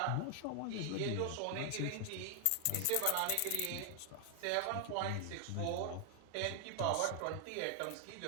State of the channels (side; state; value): both; different; correlation 0.00